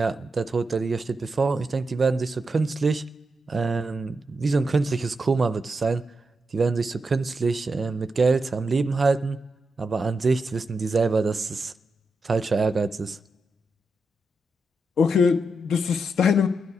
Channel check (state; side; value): normal; both; correlation 0.86